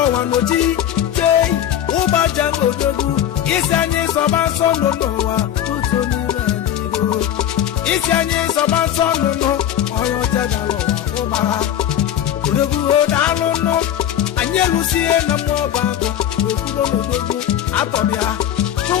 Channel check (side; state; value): right; quieter; 10.6 dB